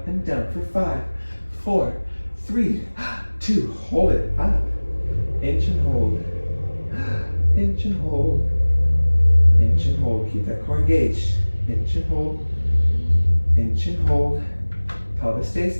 and down for 5, 4, 3, 2. Hold it up. Inch and hold. Inch and hold. Inch and hold. Keep that core engaged. Inch and hold. Inch and hold. Pelvis stays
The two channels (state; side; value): inverted; both; correlation -1.00